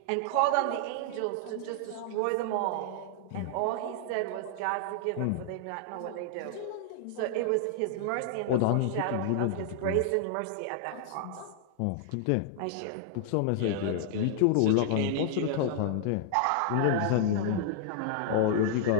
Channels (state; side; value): different; both; correlation -0.01